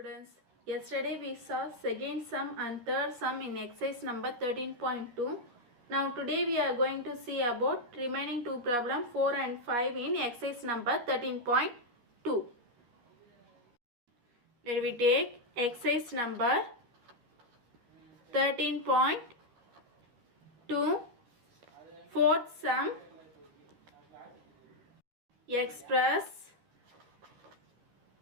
Yesterday we saw second sum and third sum in exercise number 13.2. Now today we are going to see about remaining two problem 4 and 5 in exercise number 13.2. Let we take exercise number 13.2 fourth sum. Express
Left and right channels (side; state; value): left; late; 12 ms